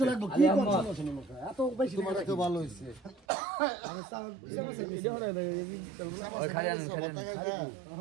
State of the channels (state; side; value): drops out; left; at 3.2 s